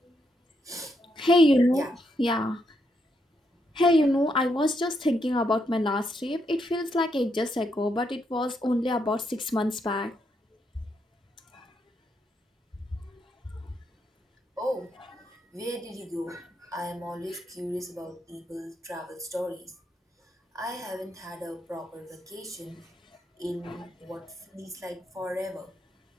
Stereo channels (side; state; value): both; normal; correlation 0.79